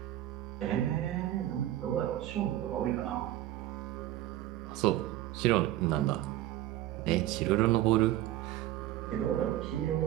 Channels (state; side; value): quieter; left; 14.0 dB